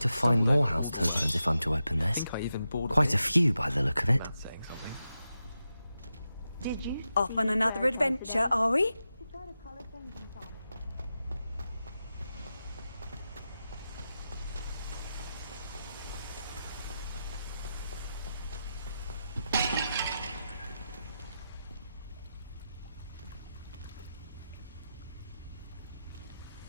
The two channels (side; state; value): both; inverted; correlation -0.90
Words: to find more house tokens if I'm to open this. Quite a few by the look of it. Did you? Off on another adventure, are we?